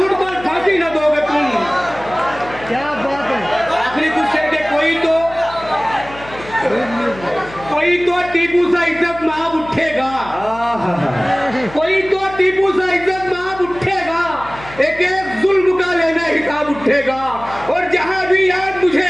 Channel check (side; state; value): left; noise; hum, 17 dB below the sound